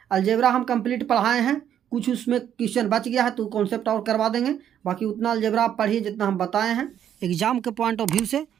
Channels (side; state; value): left; quieter; 9.8 dB